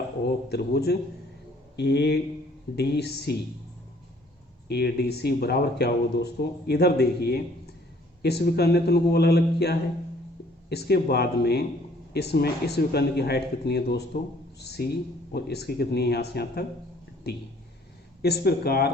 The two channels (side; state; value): both; normal; correlation 0.59